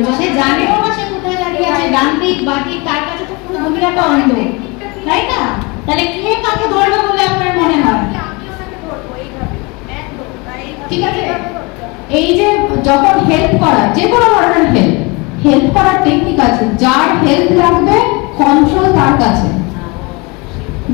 সে জানেও না সে কোথায় দাঁড়িয়ে আছে, ডান দিক বাঁ দিক, তার কাছে তো পুরো দুনিয়াটা অন্ধ, তাই না? তাহলে কে কাকে ধরবে বলে আপনার মনে হয়? ঠিক আছে? এই যে যখন হেল্প করা, যে কোনো ধরনের হেল্প করার টেকনিক আছে। যার হেল্প লাগবে কন্ট্রোল তার কাছে,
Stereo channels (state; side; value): quieter; right; 27.5 dB